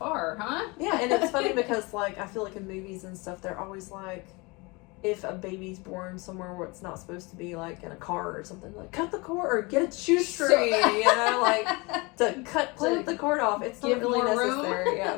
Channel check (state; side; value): quieter; right; 26.5 dB